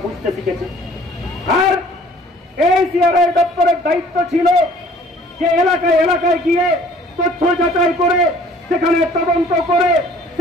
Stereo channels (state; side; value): normal; both; correlation 0.53